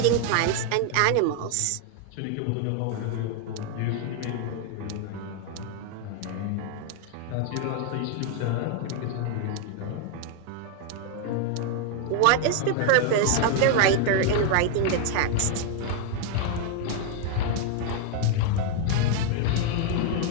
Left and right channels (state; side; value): different; both; correlation 0.00